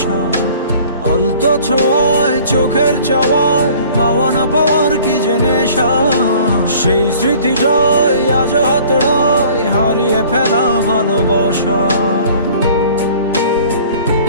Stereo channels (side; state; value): both; inverted; correlation -0.50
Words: আলতো ছোঁয়ায় চোখের চাওয়ায় পাওয়া না পাওয়ার কি যে নেশা, সেই স্মৃতিটাই আজ হাতড়ায় হারিয়ে ফেলা ভালোবাসা।